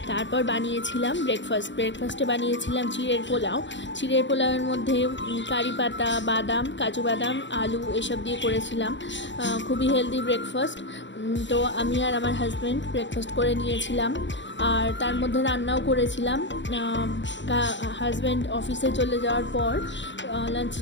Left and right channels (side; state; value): right; late; 0.53 ms